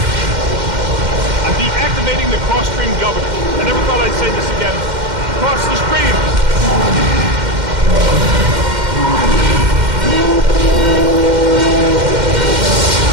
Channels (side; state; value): left; late; 2.1 ms